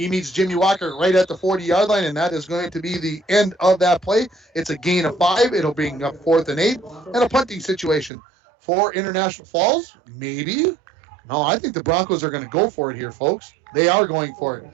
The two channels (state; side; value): drops out; left; at 8.1 s